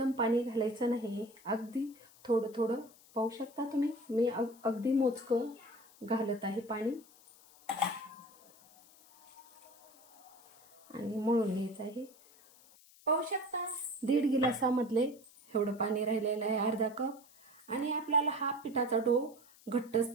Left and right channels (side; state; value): left; noise; hiss, 25 dB below the sound